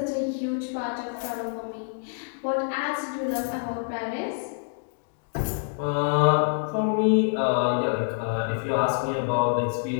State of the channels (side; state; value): right; silent; digital silence